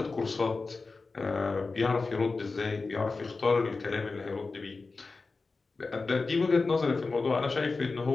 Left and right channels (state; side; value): quieter; right; 3.9 dB